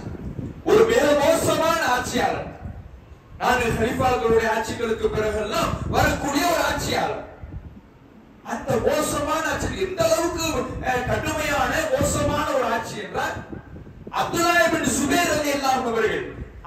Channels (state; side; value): identical; both; correlation 1.00